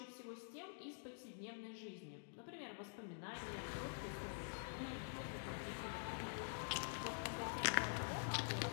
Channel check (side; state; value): right; silent; digital silence